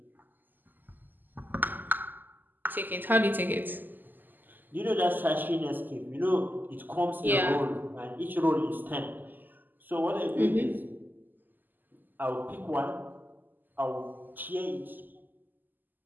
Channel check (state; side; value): late; left; 0.088 ms